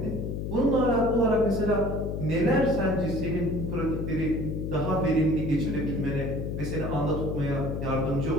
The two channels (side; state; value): left; noise; hum, 3 dB below the sound